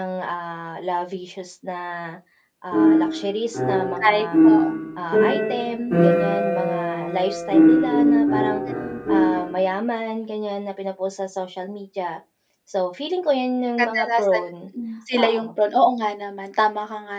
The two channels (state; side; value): identical; both; correlation 1.00